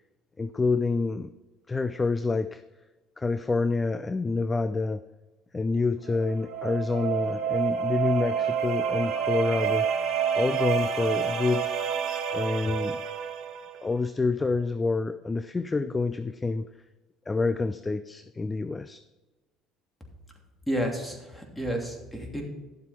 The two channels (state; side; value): normal; both; correlation 0.74